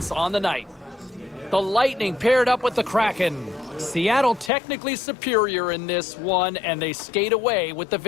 on the night. The Lightning paired up with the Kraken. Seattle technically superior in this one, and they skate away with the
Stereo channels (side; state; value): right; drops out; at 4.5 s